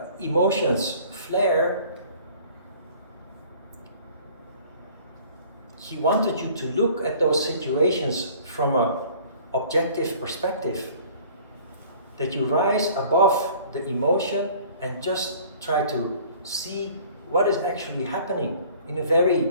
emotions flare, he wanted you to look at those situations from an objective perspective, that you rise above the emotion and just try to see what is actually happening in a very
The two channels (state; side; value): inverted; both; correlation -0.51